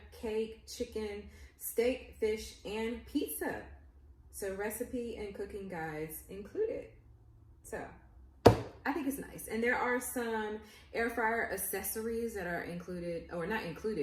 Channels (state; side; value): identical; both; correlation 1.00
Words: cake, chicken, steak, fish, and pizza. So recipe and cooking guides included. So I think it's nice. And there are some air fryer accessories that are included, or not